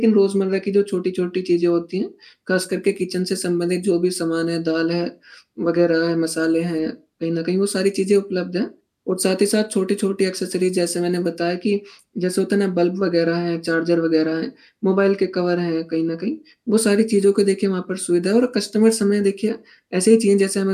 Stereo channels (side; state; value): both; identical; correlation 1.00